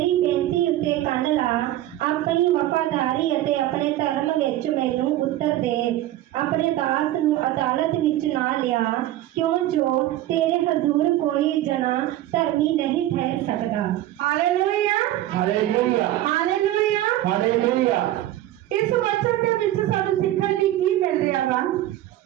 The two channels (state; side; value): quieter; left; 14.3 dB